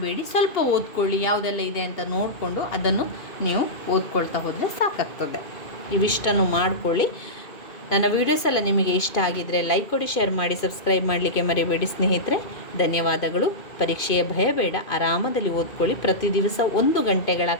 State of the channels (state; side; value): late; right; 2.3 ms